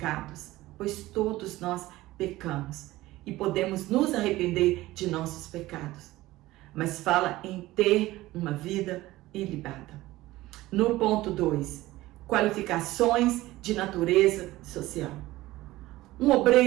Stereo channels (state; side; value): quieter; left; 17.5 dB